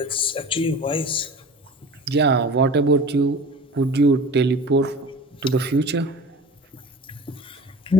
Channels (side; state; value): both; normal; correlation 0.37